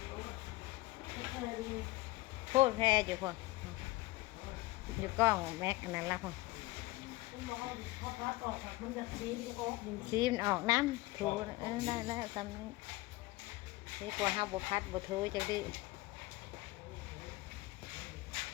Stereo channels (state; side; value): quieter; right; 20.3 dB